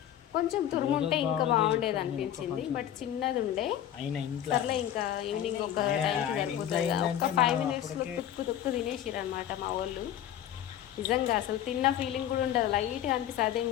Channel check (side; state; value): right; quieter; 11.1 dB